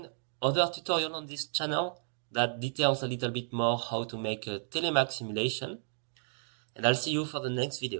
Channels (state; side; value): silent; left; digital silence